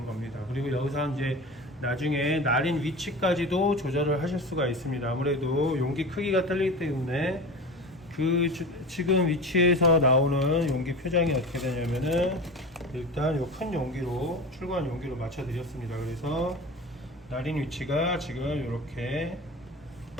겁니다. 그리고 여기서 이제 나중에 날인 위치까지도 조절을 하실 수가 있습니다. 아무래도 용기 크기가 틀리기 때문에 지금 위치에서 나오는 용기 표장이 어떻게 되냐면은 일단 요 큰 용기로 출고한 용기로 맞춰 드렸습니다. 그래서 날인 위치가 지금 이렇게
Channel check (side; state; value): both; normal; correlation 0.31